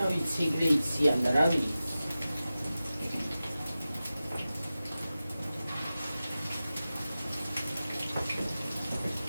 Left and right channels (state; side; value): inverted; both; correlation -0.95